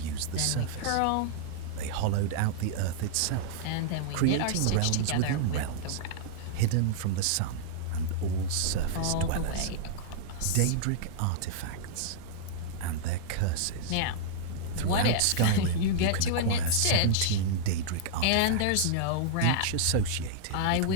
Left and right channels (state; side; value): different; both; correlation -0.02